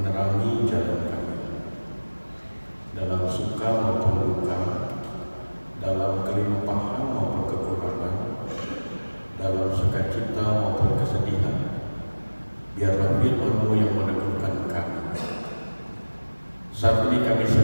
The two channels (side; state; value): both; inverted; correlation -1.00